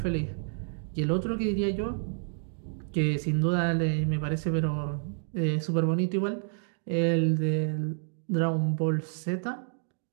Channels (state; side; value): silent; left; digital silence